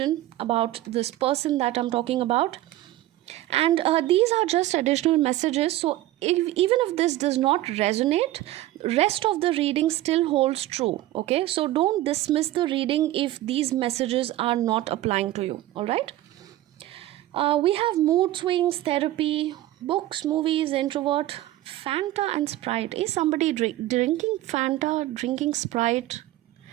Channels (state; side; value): quieter; left; 15.4 dB